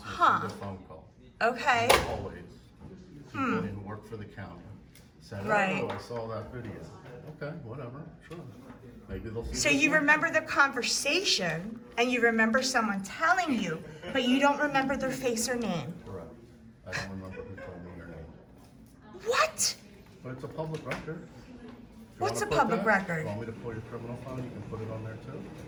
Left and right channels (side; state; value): both; identical; correlation 1.00